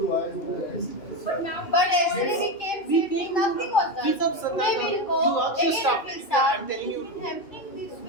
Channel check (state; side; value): late; right; 2.6 ms